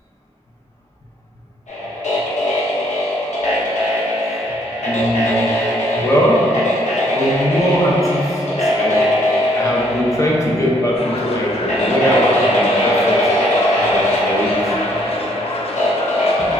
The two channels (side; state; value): both; normal; correlation 0.66